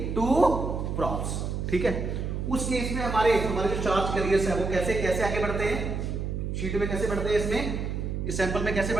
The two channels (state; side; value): noise; right; hum, 3 dB below the sound